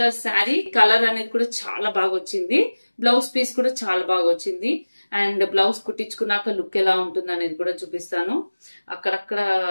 శారీ కలర్ అనేది కూడా చాలా బాగా వచ్చింది. బ్లౌజ్ పీస్ కూడా చాలా బాగా వచ్చింది. అండ్ బ్లౌజ్ కుట్టించుకున్నాక లుక్ ఎలా ఉంటుంది అనేది కూడా చూపిస్తాను. అక్కడక్కడ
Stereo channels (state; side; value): inverted; both; correlation -1.00